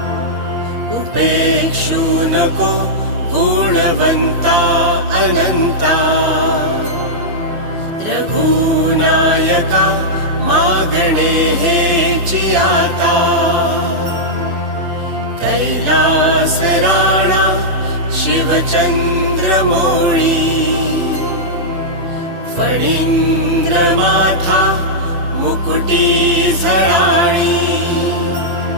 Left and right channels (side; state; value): left; late; 8.8 ms